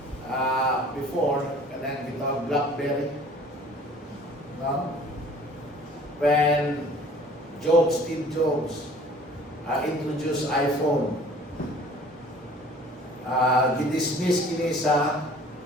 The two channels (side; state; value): both; normal; correlation 0.50